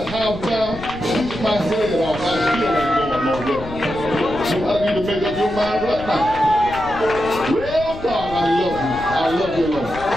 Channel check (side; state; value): left; noise; rumble, 13 dB below the sound